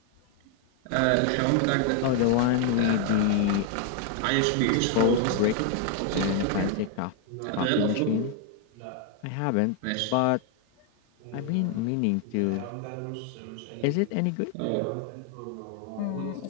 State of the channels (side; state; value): both; different; correlation 0.00